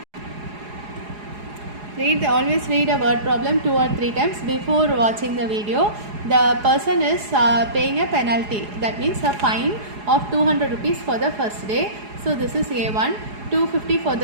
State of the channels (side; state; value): left; late; 4.8 ms